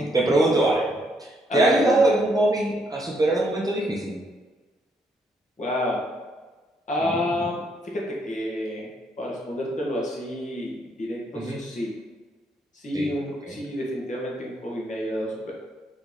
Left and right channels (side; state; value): both; normal; correlation 0.73